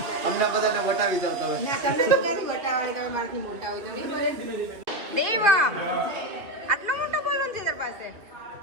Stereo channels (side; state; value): left; late; 2.3 ms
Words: અમને બધાને વટાવી જાવ તો હવે. ના તમને તો ક્યાંથી વટાવવાની, તમે મારાથી મોટા હોય તો નહીં બોલે. દેવા આટલો મોટો બોલન છે તાર પાસે.